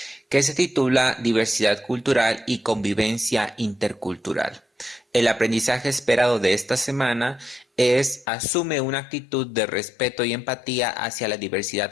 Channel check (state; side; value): drops out; right; at 8.2 s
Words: que se titula Diversidad cultural y convivencia intercultural. El aprendizaje esperado de esta semana es asume una actitud de respeto y empatía hacia la